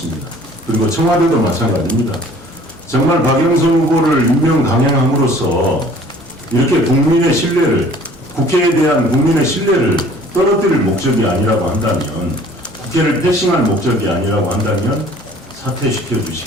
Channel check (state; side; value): normal; both; correlation 0.52